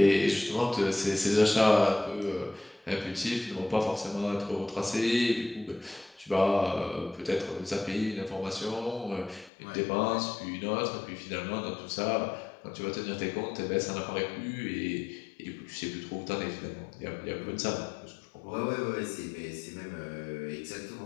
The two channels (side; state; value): right; drops out; at 9.5 s